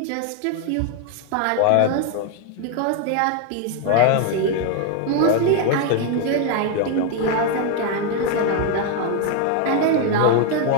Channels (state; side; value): different; both; correlation 0.00